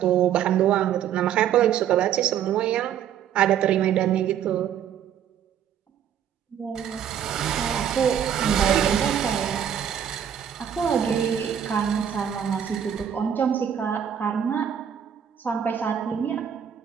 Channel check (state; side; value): quieter; left; 9.2 dB